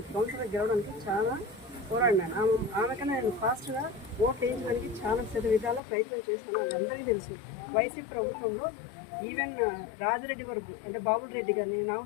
కౌన్సిలర్ గెలవడానికి చాలా పోరాడినాను. ఆమెకన్నా నేను ఫాస్ట్గా ఓట్ వేయించడానికి చాలా విధాల ప్రయత్నం చేస్తున్నాను. అది అందరికీ తెలుసు. వైసీపీ ప్రభుత్వంలో ఈవెన్ రాజరెడ్డి వరకు అంటే బాబుల్ రెడ్డి కానీ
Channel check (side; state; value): right; drops out; at 5.8 s